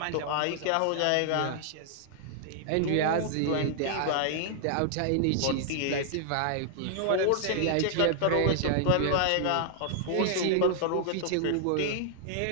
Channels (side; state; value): both; different; correlation -0.01